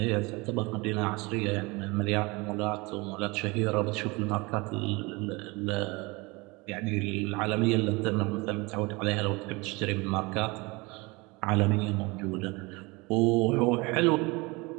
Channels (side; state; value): left; quieter; 25.3 dB